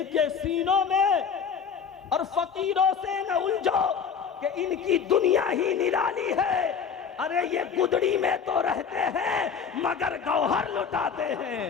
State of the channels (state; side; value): quieter; right; 6.7 dB